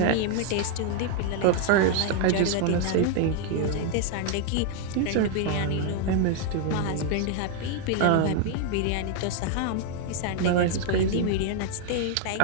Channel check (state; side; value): different; both; correlation 0.00